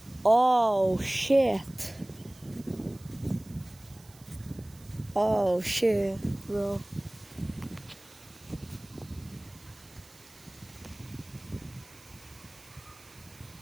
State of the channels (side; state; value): right; noise; hiss, 24 dB below the sound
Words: Oh shit. Oh shit, bro.